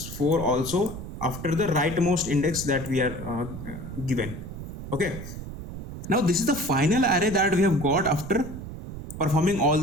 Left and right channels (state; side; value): noise; right; rumble, 10 dB below the sound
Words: 4 also after the rightmost index that we are given, okay. Now this is the final array that we have got after performing all